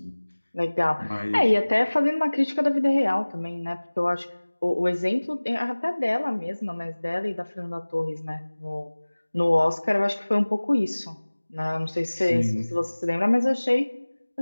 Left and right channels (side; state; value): both; inverted; correlation -1.00